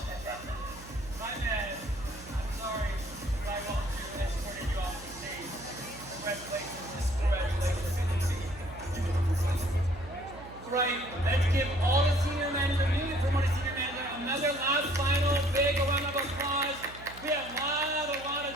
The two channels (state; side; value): noise; right; hum, 17 dB below the sound